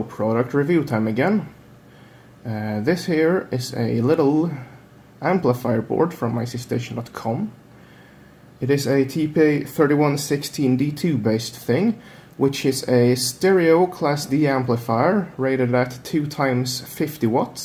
product review time again. This here is a little amplifier board from ICStation.com. It is a TPA3116D2 based thing, which is a stereo Class D amplifier rated at 2 times 50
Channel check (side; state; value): both; identical; correlation 1.00